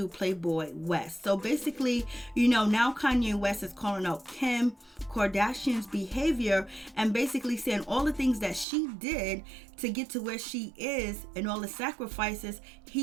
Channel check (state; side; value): drops out; left; at 8.7 s